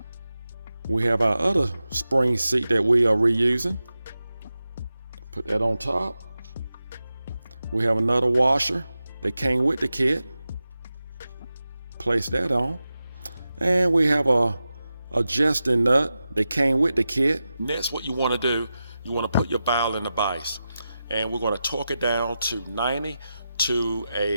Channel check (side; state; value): both; inverted; correlation -0.92